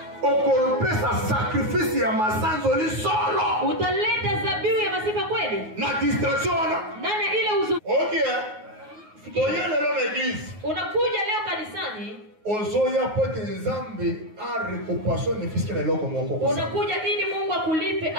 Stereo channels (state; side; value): late; left; 9.4 ms